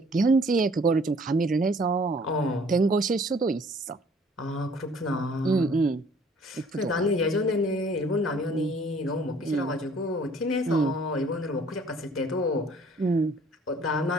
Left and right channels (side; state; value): both; normal; correlation 0.57